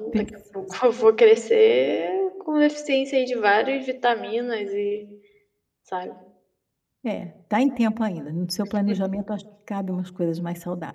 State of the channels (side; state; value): both; identical; correlation 1.00